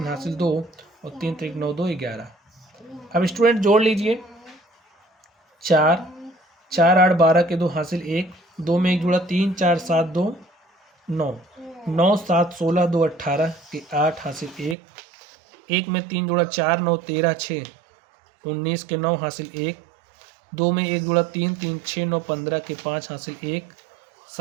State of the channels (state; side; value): drops out; left; at 14.8 s